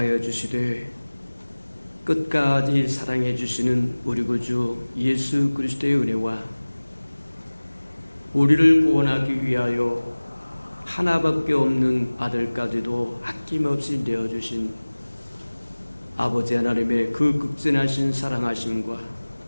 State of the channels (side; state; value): both; inverted; correlation -1.00